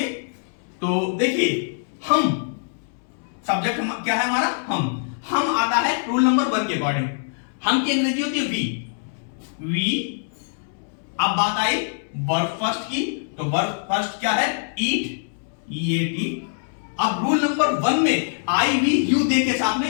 तो देखिए हम सब्जेक्ट क्या है हमारा? हम आता है रूल नंबर 1 के अकॉर्डिंग। हम की अंग्रेजी होती है वी। अब बात आई वर्ब फर्स्ट की, तो वर्ब फर्स्ट क्या है? ईट, ईएटी। अब रूल नंबर 1 में आई वी यू दे के साथ में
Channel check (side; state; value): right; silent; 63 dB below the other